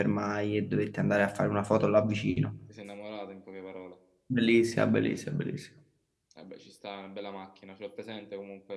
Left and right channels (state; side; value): identical; both; correlation 1.00